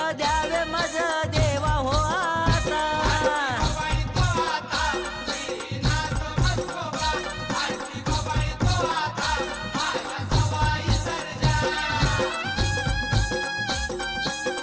द्यावे मज देवा हो आता. बाबाई तो आता, श्रीनाथ मस्कोबा. आरती बाबाई तो आता, माझ्या सवाई सर्जा.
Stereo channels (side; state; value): both; identical; correlation 1.00